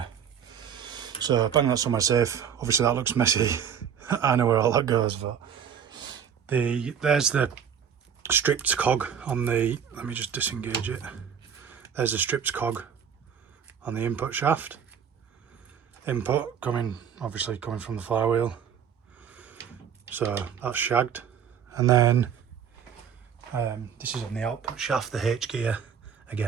So bang that somewhere safe. Obviously that looks messy. I know where all that goes, but there's the stripped cog on the, let me just disengage it. There's a stripped cog on the input shaft. Input obviously coming from the flywheel. So that's shagged. And then this is on the output shaft, the H gear.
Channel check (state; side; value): quieter; left; 7.9 dB